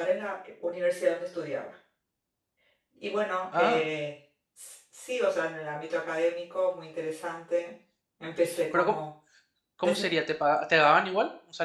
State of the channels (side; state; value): both; identical; correlation 1.00